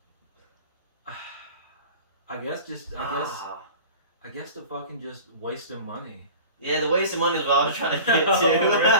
I guess the fucking just wasting money. Yeah, the waste of money is what I was trying to get to. Oh,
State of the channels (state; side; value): inverted; both; correlation -0.39